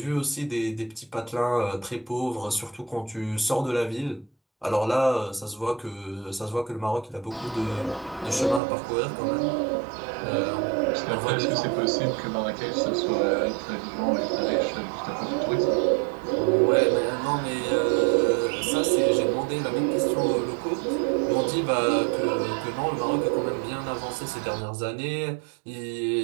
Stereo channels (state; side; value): drops out; left; at 8.6 s